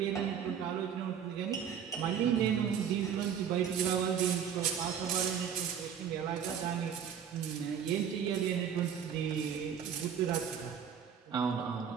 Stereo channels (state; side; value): quieter; left; 8.1 dB